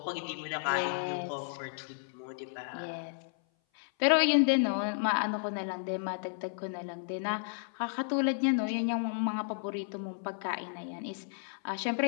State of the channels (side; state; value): right; silent; 56 dB below the other